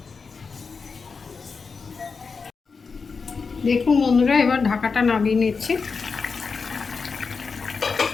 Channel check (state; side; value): quieter; right; 5.0 dB